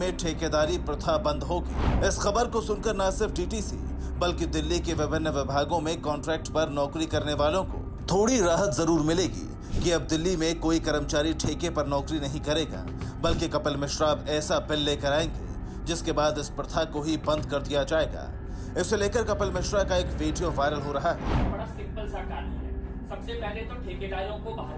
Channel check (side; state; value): both; identical; correlation 1.00